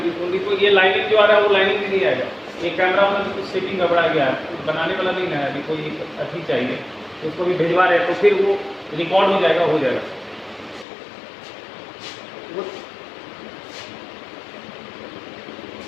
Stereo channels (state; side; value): drops out; right; at 10.9 s